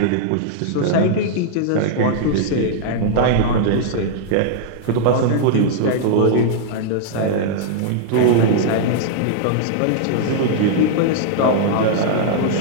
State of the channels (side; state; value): both; different; correlation -0.01